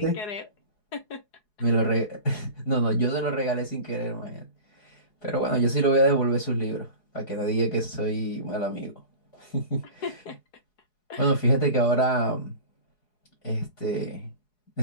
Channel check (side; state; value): right; late; 4.8 ms